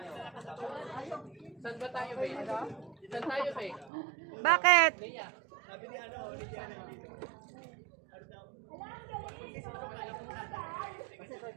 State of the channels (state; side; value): drops out; left; at 3.9 s